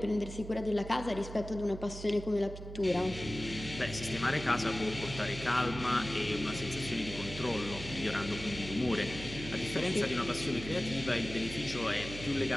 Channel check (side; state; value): right; noise; hum, 11 dB below the sound